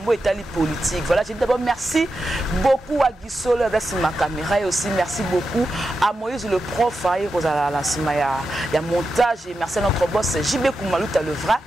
etali politique. Voilà, je dis d'abord merci beaucoup à Gisolo avec ma caméra et aussi merci beaucoup à Moïse le prof à la sima ya montage et merci à notre boss JB Kumaluta le vrai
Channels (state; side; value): normal; both; correlation 0.89